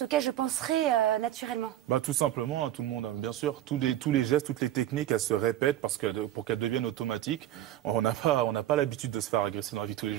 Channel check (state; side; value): quieter; left; 13.0 dB